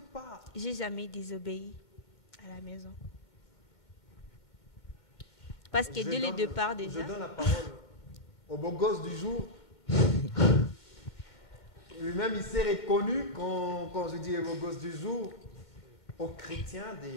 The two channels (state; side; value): late; right; 2.1 ms